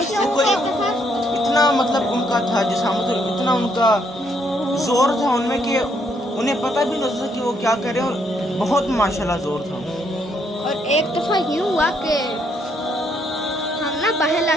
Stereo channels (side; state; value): both; normal; correlation 0.72